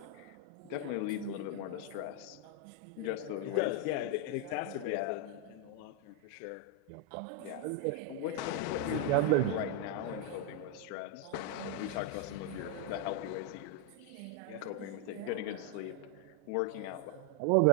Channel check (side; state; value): both; different; correlation 0.01